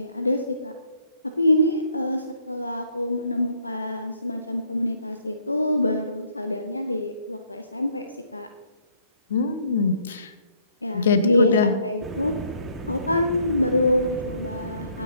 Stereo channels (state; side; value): inverted; both; correlation -0.66